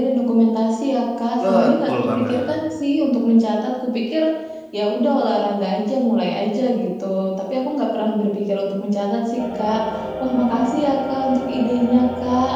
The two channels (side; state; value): both; identical; correlation 1.00